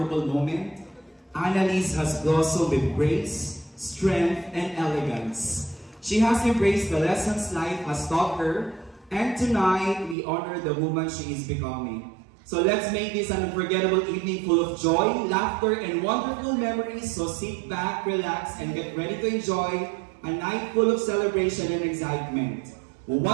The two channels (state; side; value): drops out; left; at 10.2 s